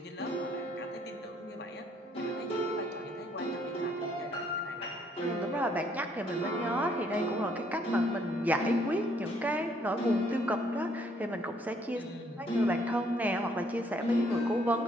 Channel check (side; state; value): both; normal; correlation 0.66